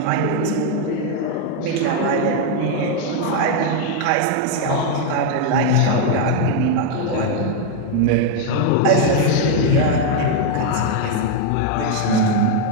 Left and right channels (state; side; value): different; both; correlation 0.01